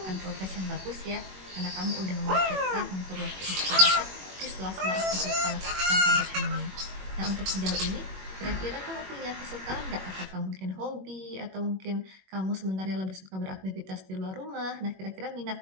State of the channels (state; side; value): late; left; 21 ms